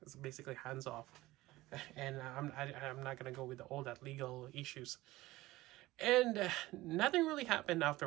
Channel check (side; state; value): left; quieter; 18.1 dB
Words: it's basically hands off, and I'm not gonna go with all that legal issues. And nothing really happened